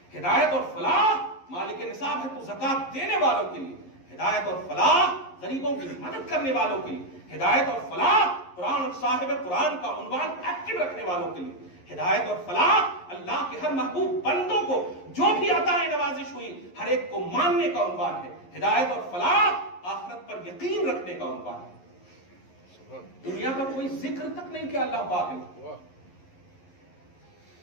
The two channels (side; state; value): right; late; 11 ms